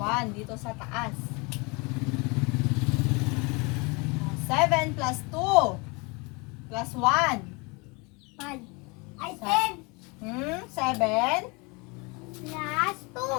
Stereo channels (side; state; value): right; quieter; 28.5 dB